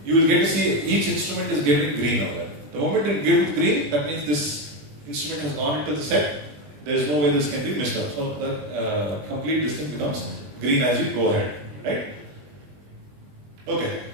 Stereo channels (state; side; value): late; left; 20 ms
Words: you will get to see each instrument is getting green over there. The moment it gives green, that means this instrument has gone into the set. There is no way this can be missed out. So the complete this thing becomes green as you go ahead. Right? Okay.